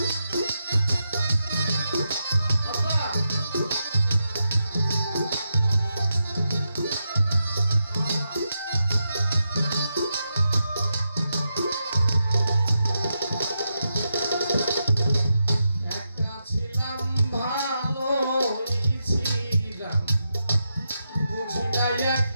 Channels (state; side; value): inverted; both; correlation -0.86